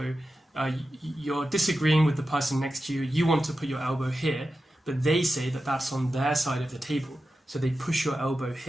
you're disagreeing with the person next to you. You want to put your elbow here, but they say that that's on their side of the table. So they push your elbow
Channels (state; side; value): normal; both; correlation 0.92